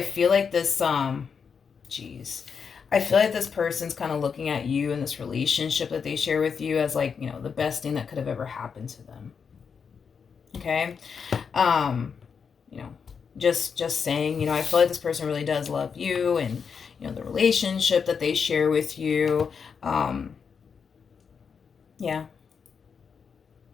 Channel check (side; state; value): right; quieter; 6.2 dB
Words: feel like this, geez. I feel like this person's kind of looking at you in this relationship that they share with you as like, you know, the best thing that could have ever happened to them. Okay? You know, just saying, you know, I feel like this person really does love you and, you know, the relationship that they share with you. Yeah.